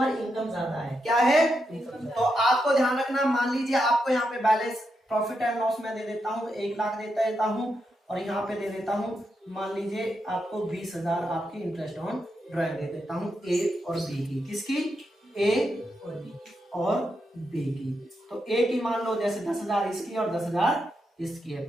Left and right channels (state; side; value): normal; both; correlation 0.84